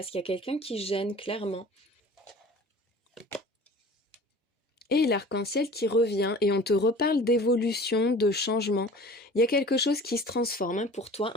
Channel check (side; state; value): both; normal; correlation 0.43